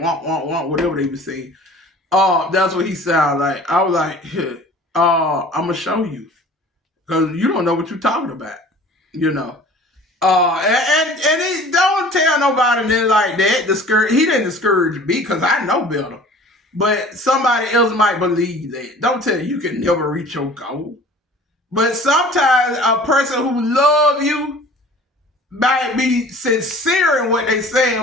whatever they were saying. That's what he sounded like. I was like, I'm going to show you. Because you don't know what you're talking about, you know. And he don't tell nobody that like that. He didn't discourage me because I know better. But somebody else might believe that. Don't tell you can never reach your goal. But sometimes a person who love you might be sincere in what they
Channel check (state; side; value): normal; both; correlation 0.46